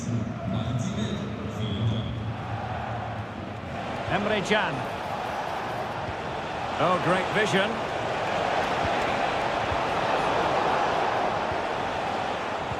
Emre Can. Oh, great vision.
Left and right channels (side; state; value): both; identical; correlation 1.00